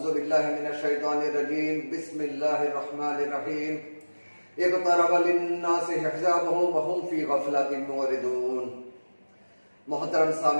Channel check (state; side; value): inverted; both; correlation -1.00